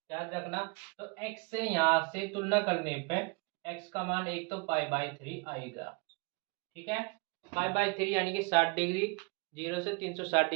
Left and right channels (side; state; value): left; quieter; 30.8 dB